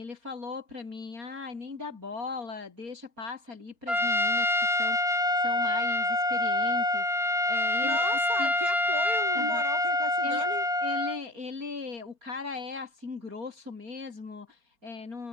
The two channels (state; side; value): late; left; 4.4 ms